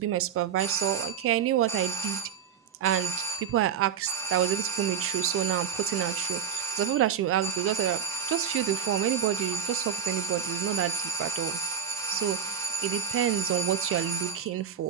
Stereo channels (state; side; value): quieter; left; 7.9 dB